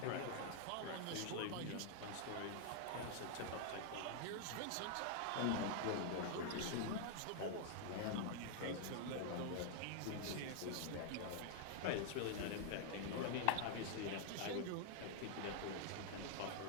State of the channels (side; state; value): both; different; correlation 0.00